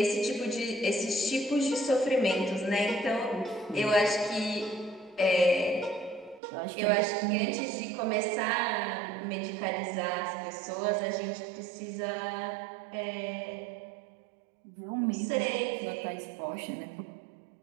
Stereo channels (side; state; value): left; drops out; at 6.4 s